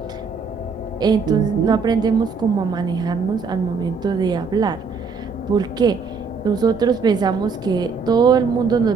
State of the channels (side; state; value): left; quieter; 5.1 dB